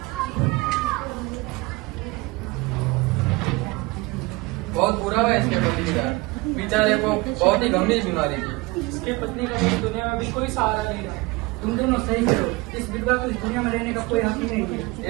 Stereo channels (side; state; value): left; quieter; 23.4 dB